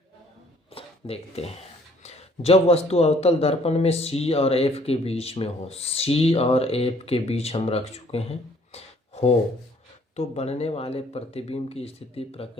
देखते हैं। जब वस्तु अवतल दर्पण में सी और एफ के बीच में हो, सी और एफ के बीच हम रख चुके हैं, हो तो बनने वाले प्रतिबिंब की स्थिति,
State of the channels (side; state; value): both; normal; correlation 0.60